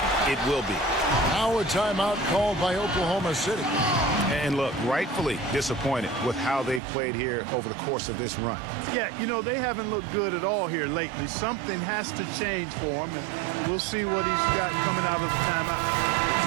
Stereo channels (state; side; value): drops out; left; at 6.8 s